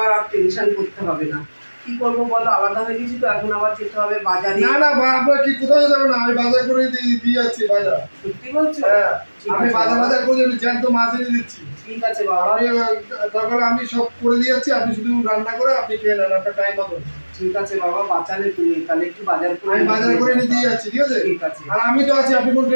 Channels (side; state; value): both; inverted; correlation -1.00